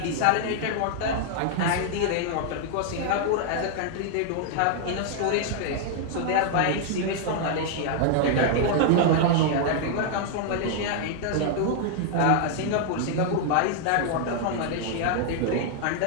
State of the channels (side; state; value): both; different; correlation 0.00